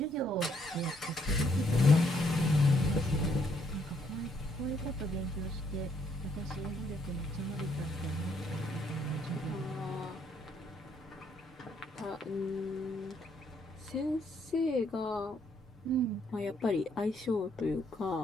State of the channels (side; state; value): both; normal; correlation 0.71